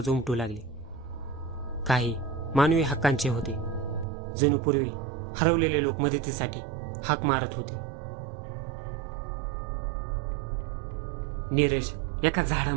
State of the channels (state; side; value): drops out; left; at 4.0 s